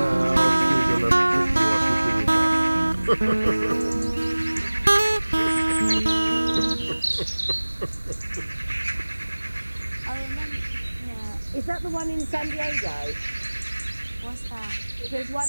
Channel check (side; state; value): both; inverted; correlation -1.00